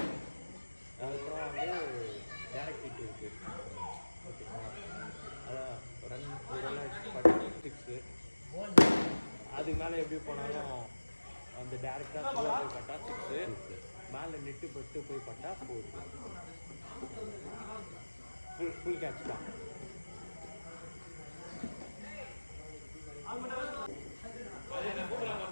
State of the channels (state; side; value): inverted; both; correlation -1.00